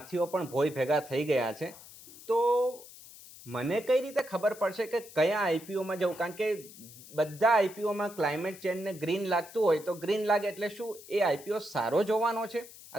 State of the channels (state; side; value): noise; left; hiss, 18 dB below the sound